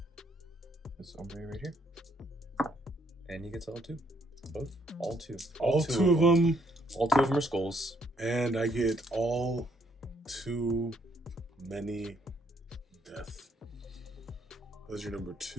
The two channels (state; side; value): normal; both; correlation 0.70